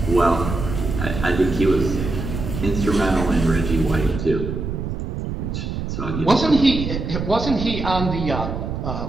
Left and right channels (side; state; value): right; noise; rumble, 4 dB below the sound